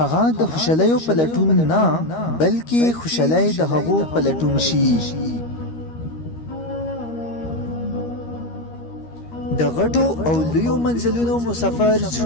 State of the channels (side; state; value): right; late; 13 ms